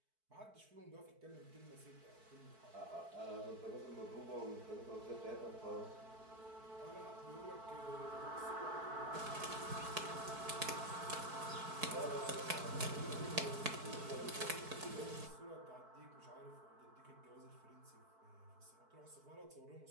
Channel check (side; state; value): left; late; 4.6 ms